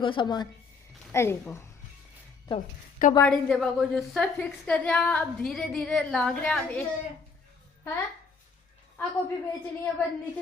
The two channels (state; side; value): quieter; right; 4.8 dB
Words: सामान। अरे को तो कबाड़ी देवा को जो सब फिक्स कर रहा अब धीरे धीरे लाग रहा अब एक है आ कॉपी बेचनी है पर